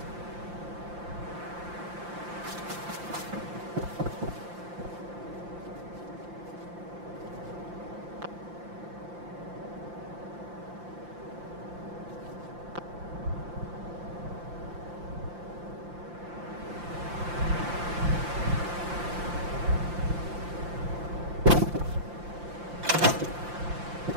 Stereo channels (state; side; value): late; left; 5.8 ms